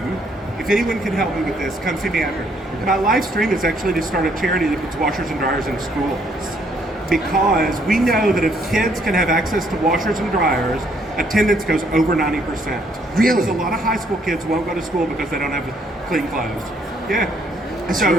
if anyone can help me with this, come see me after. My life's dream is actually to start a charity that puts washers and dryers in schools. Because we know that if kids can have access to washers and dryers, attendance goes over 90%. Really? Because a lot of high school kids won't go to school because they don't have clean clothes. Yeah. That's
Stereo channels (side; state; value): both; normal; correlation 0.68